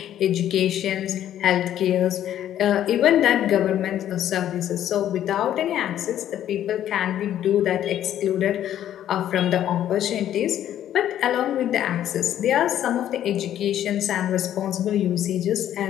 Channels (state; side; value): quieter; right; 11.3 dB